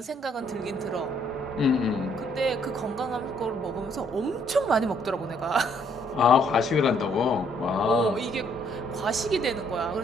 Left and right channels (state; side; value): normal; both; correlation 0.67